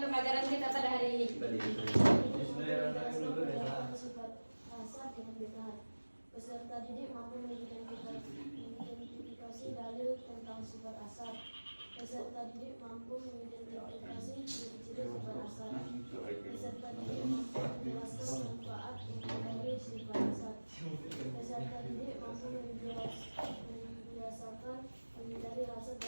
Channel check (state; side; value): inverted; both; correlation -1.00